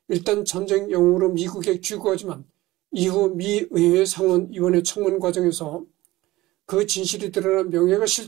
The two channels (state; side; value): quieter; left; 18.2 dB